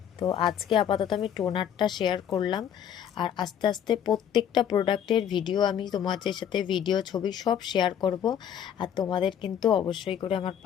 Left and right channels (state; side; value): quieter; right; 9.2 dB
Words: তো আজকে আপাতত আমি টোনারটা শেয়ার করলাম, আর আস্তে আস্তে প্রত্যেকটা প্রোডাক্টের ভিডিও আমি তোমাদের সাথে ভিডিও ছবি সব শেয়ার করব। আর তোমাদের কিন্তু অবশ্যই করে আমার